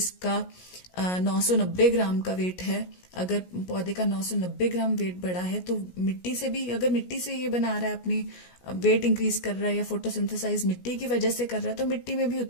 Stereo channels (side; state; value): right; late; 17 ms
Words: 990 ग्राम का वेट है, अगर पौधे का 990 ग्राम वेट बढ़ा है तो मिट्टी से भी, अगर मिट्टी से ये बना रहा है, अपनी वेट इंक्रीज कर रहा है या फोटोसिंथेसाइज मिट्टी की वजह से कर रहा है, तो मिट्टी में भी